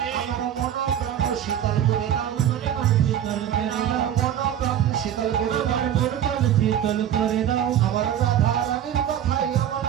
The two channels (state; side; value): quieter; left; 10.2 dB